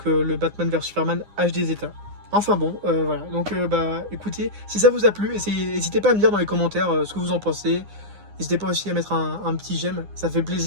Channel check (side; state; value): left; late; 9.8 ms